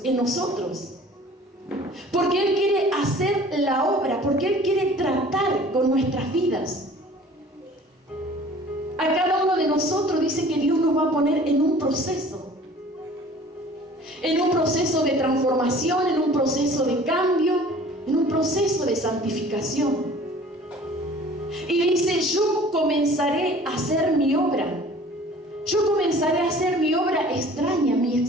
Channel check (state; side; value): normal; both; correlation 0.48